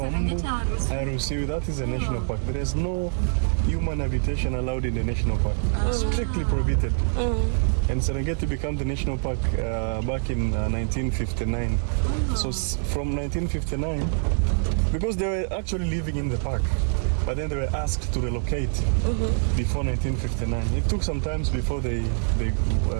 hawaruhusiwi. That is a national park. There is no human habitation allowed in the national park. Strictly prohibited. And Serengeti became the national park back in 1959. So from 1959, because they were actually living in the park, but then they were asked to relocate before 1959. It took some time before they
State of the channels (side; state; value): left; silent; digital silence